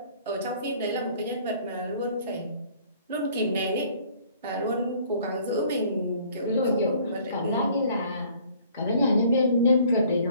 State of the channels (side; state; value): both; inverted; correlation -0.56